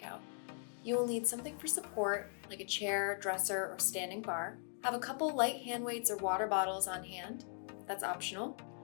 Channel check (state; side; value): silent; right; 52 dB below the other